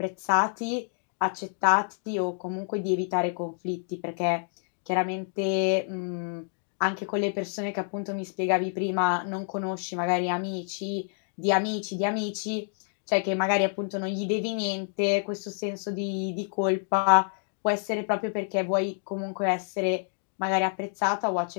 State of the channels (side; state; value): right; silent; digital silence